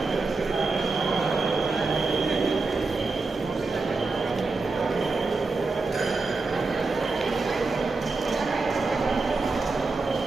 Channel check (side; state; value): left; quieter; 3.8 dB